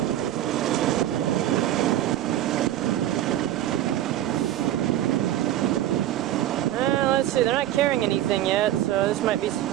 They're not carrying anything yet, so this might be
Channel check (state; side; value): quieter; left; 12.8 dB